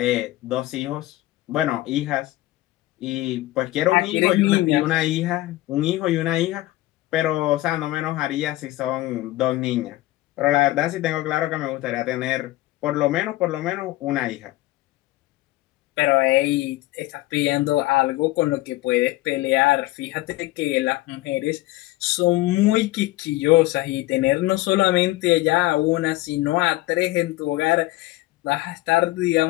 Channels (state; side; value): quieter; right; 17.7 dB